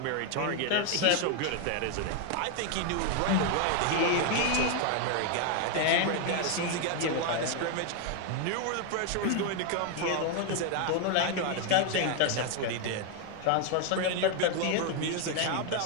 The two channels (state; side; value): different; both; correlation 0.00